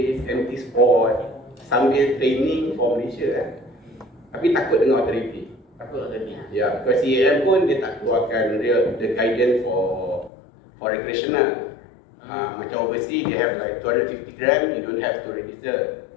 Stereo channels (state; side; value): drops out; right; at 10.3 s